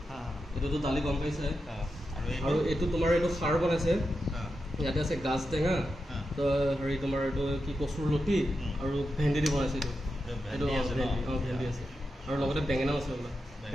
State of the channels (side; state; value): both; normal; correlation 0.88